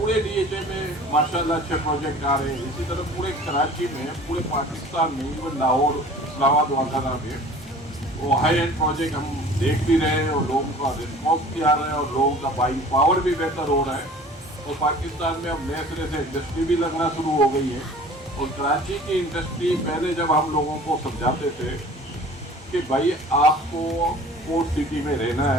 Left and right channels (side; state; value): both; normal; correlation 0.46